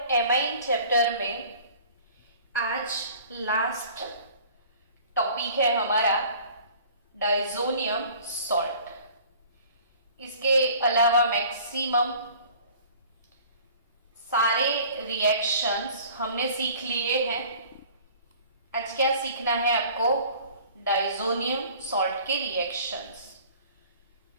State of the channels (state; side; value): inverted; both; correlation -0.49